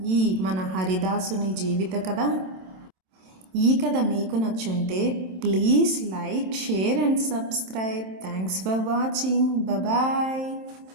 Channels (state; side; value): late; left; 27 ms